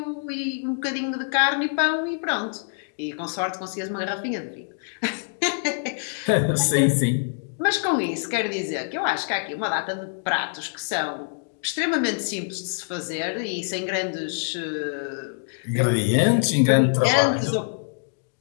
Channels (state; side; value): silent; right; digital silence